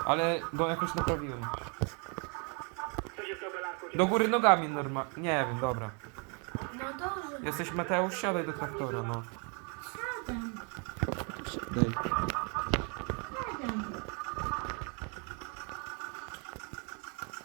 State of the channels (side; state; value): left; quieter; 36.3 dB